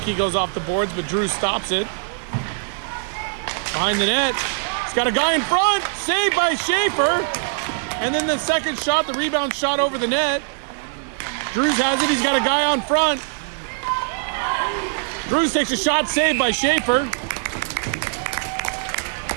goes off the boards, but Drews stops it. Behind the net. He's got a guy in front. Saved by Schaefer. And then the second shot, the rebound shot over the net. Drews has it. He's got a guy on front. Drews takes a shot, saved by Schaefer.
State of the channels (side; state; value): left; silent; digital silence